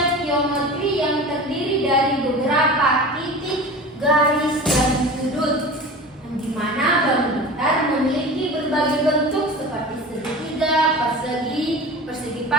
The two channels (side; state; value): both; normal; correlation 0.35